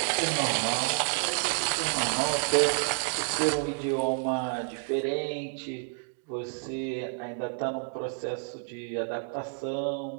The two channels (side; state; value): left; silent; 58 dB below the other